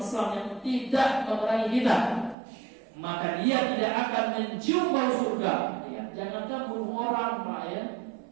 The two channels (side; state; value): left; drops out; at 2.4 s